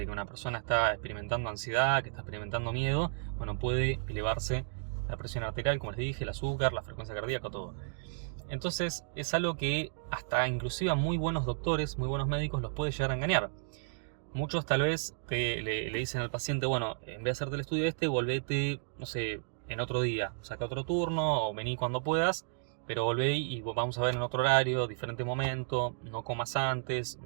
que una persona está experimentando ansiedad, que está experimentando miedo, bueno, puede elevarse la presión arterial, como les dije, el azúcar, la frecuencia cardíaca, todo. Entonces es algo que hasta inclusive a muy buenos doctores, muy buenos médicos los puede llegar a engañar. Muchos tal vez le dicen al paciente, bueno, en vez de hacerte el estudio volvete, no sé, en otro día, saca otro turno o vení cuando puedas, pero volvé y vamos a ver en otro horario, diferente momento, no comas antes,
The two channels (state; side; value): silent; left; digital silence